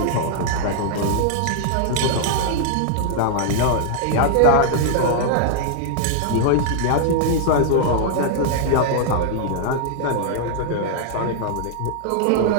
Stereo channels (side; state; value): both; different; correlation -0.01